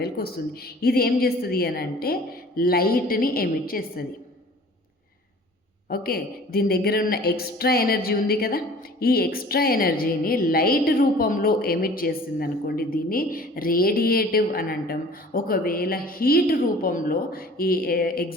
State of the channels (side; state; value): both; normal; correlation 0.47